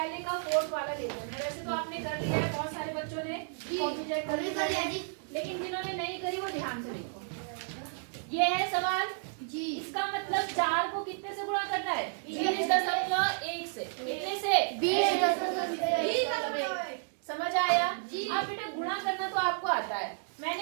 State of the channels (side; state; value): left; silent; digital silence